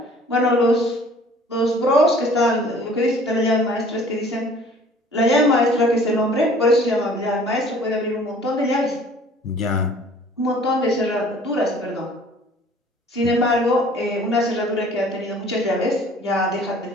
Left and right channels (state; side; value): normal; both; correlation 0.52